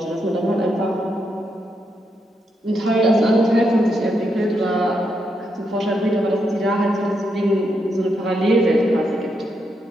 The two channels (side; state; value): both; normal; correlation 0.81